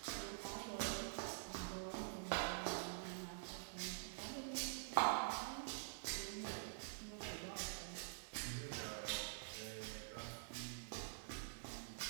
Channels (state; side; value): silent; left; digital silence